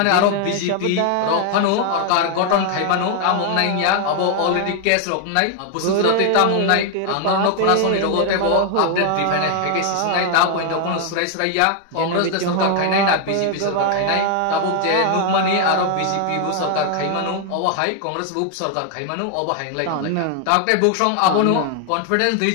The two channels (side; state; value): both; different; correlation 0.00